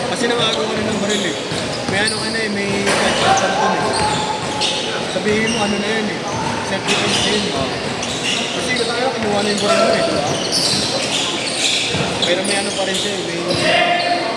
Kasi nangagawa rin ng baril eh. May ano ka na eh, may gunshot ka na dun eh. Sabihin mo ano na yun eh. Self-defense na yun eh. Kasi tayo, kinuha na yung baril mo eh. Diba? Pero may ano pa rin siya eh. May...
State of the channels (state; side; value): identical; both; correlation 1.00